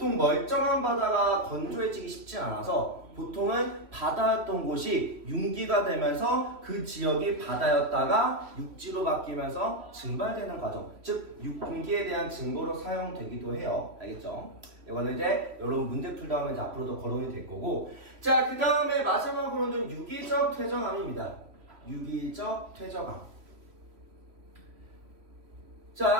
멀쩡한 바다가 건조해지기 쉽지 않아서 보통은 바다였던 곳이 융기가 되면서 그 지역이 바다였다가 육지로 바뀌면서 증발되는 과정, 즉 융기에 대한 증거로 사용되기도 해요. 알겠죠? 이거는 이제 여러분 문제 풀다 하면 이제 앞으로도 거론이 될 거고, 자, 그 다음에 마지막으로는 유기적 퇴적암입니다. 유기적 퇴적암.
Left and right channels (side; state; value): left; late; 3.1 ms